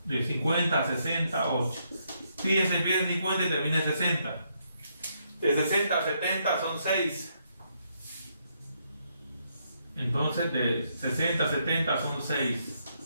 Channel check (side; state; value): both; inverted; correlation -0.75